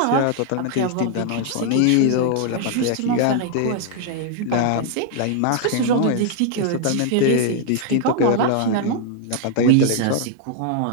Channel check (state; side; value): different; both; correlation 0.00